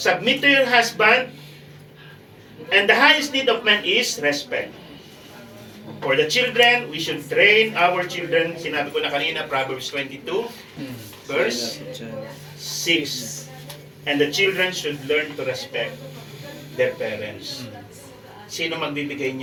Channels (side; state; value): both; identical; correlation 1.00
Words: to your husband. And the highest need of man is respect. For the children, we should train our children. Sinabi ko na kanina, Proverbs 22, verse 6. And the children should learn to respect their parents. Sino magbibigay